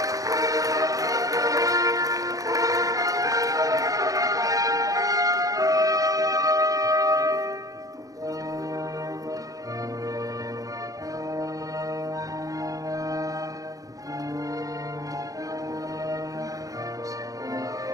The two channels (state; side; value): late; left; 0.17 ms